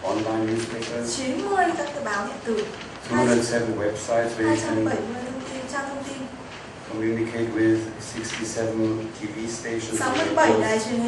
online newspapers, 90 các cái báo điện tử, 207 websites where you 270 can thông tin, trang thông tin, communicate with 67 TV stations, 67 and đài truyền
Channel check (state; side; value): identical; both; correlation 1.00